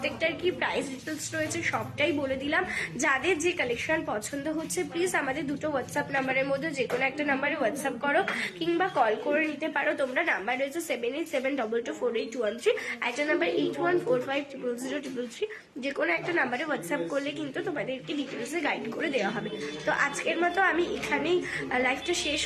কি প্রাইস ডিটেলস রয়েছে সবটাই বলে দিলাম। যাদের যে কালেকশন পছন্দ হচ্ছে প্লিজ আমাদের দুটো হোয়াটসঅ্যাপ নাম্বারের মধ্যে যে কোনো একটা নাম্বারে হোয়াটসঅ্যাপ করো কিংবা কল করে নিতে পারো তোমরা। নাম্বার রয়েছে 7872248113, একটা নাম্বার 8145000033। যে কোনো একটা নাম্বারে হোয়াটসঅ্যাপ করলে কিন্তু তোমাদেরকে ডিটেলসে গাইড করে দেওয়া হবে। তো আজকের মতো আমি এখানেই লাইভটা শেষ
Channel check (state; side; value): identical; both; correlation 1.00